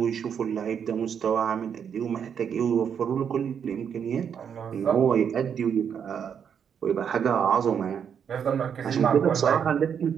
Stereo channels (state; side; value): quieter; left; 7.7 dB